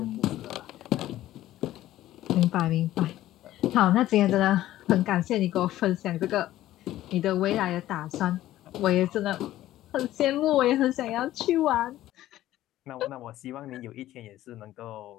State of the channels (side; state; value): right; quieter; 14.2 dB